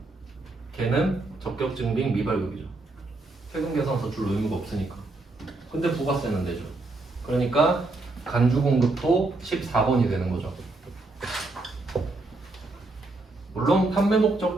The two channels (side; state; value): left; quieter; 3.1 dB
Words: 걔는 적격 증빙 미발급이죠. 세금계산서 줄 의무가 없으니까. 근데 부가세는 내죠. 그러니까 간주 공급도 14번이 되는 거죠. 물론 판매 목적